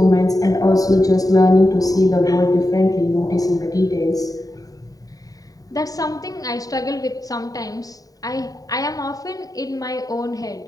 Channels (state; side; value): late; right; 0.18 ms